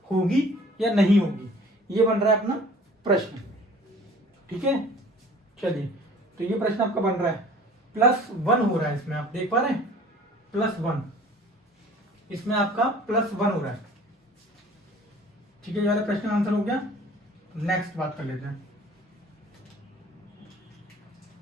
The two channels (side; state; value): both; normal; correlation 0.48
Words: होगी या नहीं होगी, ये बन रहा है अपना प्रश्न, ठीक है, चलिए तो ये प्रश्न आपका बन रहा है, +1 हो रहा है इसमें, आप देख पा रहे हैं, +1, इसमें आपका +1 हो रहा है, ठीक है, ये वाला प्रश्न का आंसर हो गया। नेक्स्ट बात कर लेते हैं,